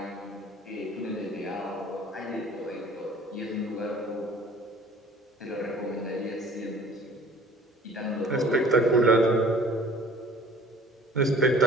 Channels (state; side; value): normal; both; correlation 0.49